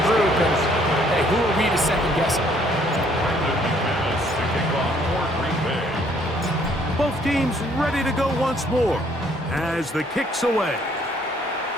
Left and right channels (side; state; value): both; normal; correlation 0.64